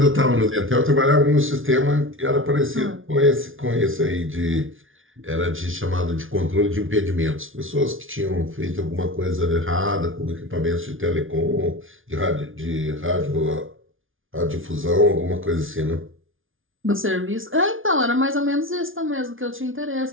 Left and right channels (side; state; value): left; late; 0.58 ms